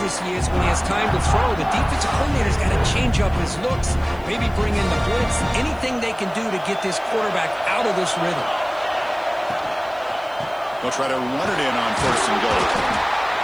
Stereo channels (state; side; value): noise; left; hiss, 29 dB below the sound